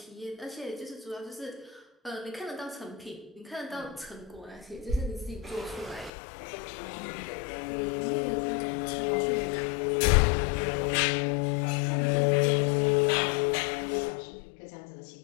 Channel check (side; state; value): right; drops out; at 6.1 s